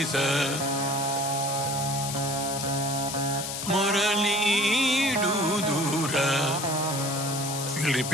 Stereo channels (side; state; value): left; noise; hiss, 5 dB below the sound